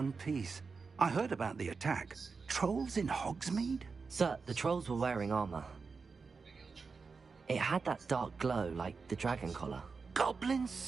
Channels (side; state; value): left; quieter; 4.8 dB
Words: piece. I heard about the attack. Trolls in Hogsmeade? Sir, the trolls were wearing armor. It had that dark glow like the dragon collar. Goblin